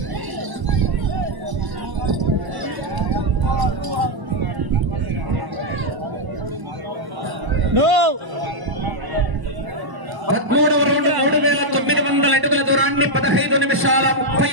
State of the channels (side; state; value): left; late; 1.0 ms